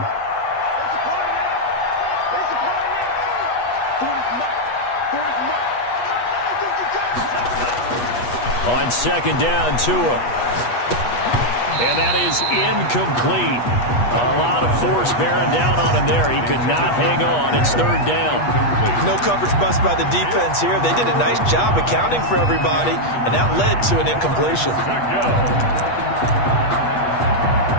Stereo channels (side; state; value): right; late; 8.3 ms